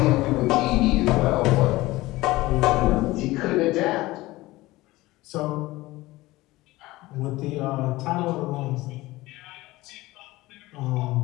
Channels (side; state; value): right; quieter; 19.0 dB